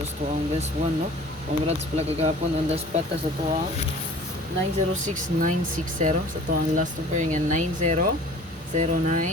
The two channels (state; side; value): normal; both; correlation 0.46